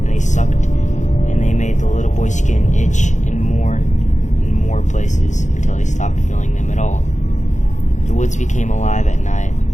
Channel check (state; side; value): late; right; 0.35 ms